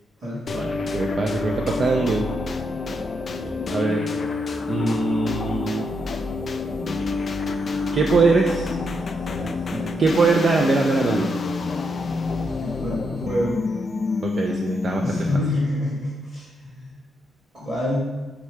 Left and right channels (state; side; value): normal; both; correlation 0.80